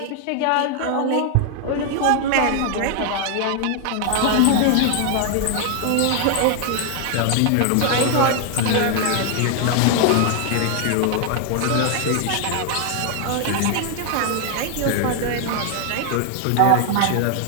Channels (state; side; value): different; both; correlation 0.00